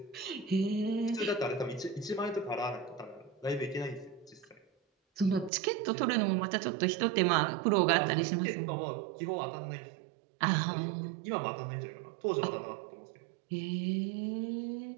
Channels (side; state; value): left; drops out; at 5.5 s